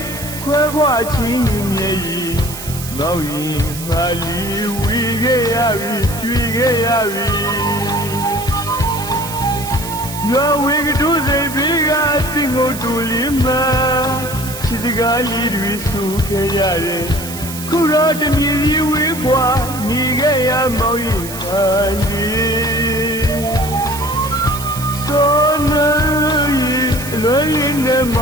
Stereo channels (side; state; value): right; noise; hiss, 11 dB below the sound